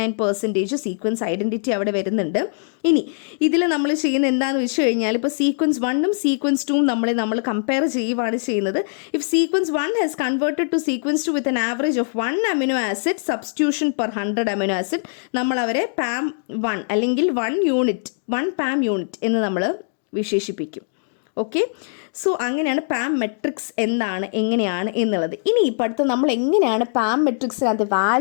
സീക്വൻസ് ഐഡൻറ്റിറ്റി അവിടെ വരുന്നുണ്ട്. ഇനി ഇതിൽ നമ്മൾ ചെയ്യുന്ന എന്താണെന്ന് വെച്ച് കഴിഞ്ഞാൽ ഇപ്പോൾ സീക്വൻസ് 1ഉം സീക്വൻസ് 2ഉം നമ്മൾ കമ്പയർ ചെയ്യുവാണ് ചെയ്യുന്നത്. If sequence 1 has converted to sequence 2 with an average of 1 amino acid substitution per 100 amino acid, നമ്മൾ അവരെ പാം 1 അല്ലെങ്കിൽ 1 പാം യൂണിറ്റ് എന്ന് നമ്മൾ വിശേഷിപ്പിക്കും. ഓക്കെ, സോ അങ്ങനെയാണ് പാം മെട്രിക്സ് എന്താണ് എങ്ങനെയാണ് എന്നുള്ളത്. ഇനി ഇപ്പോൾ അടുത്ത് നമ്മൾ എങ്ങനെയാണ് പാം മെട്രിക്സിനകത്ത്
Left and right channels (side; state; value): right; silent; digital silence